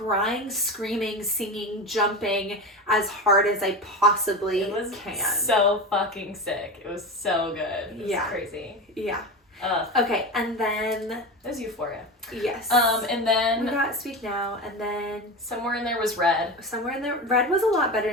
screaming, singing, jumping as hard as I possibly can. So fucking sick. It was so good. It was crazy. Yeah. Okay, and then there's Euphoria. Yes. And then we got Speak Now, and then somewhere in there was Red. Somewhere in there, Red was a lot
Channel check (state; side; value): normal; both; correlation 0.24